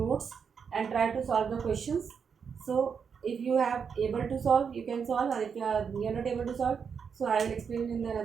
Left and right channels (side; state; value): left; quieter; 6.5 dB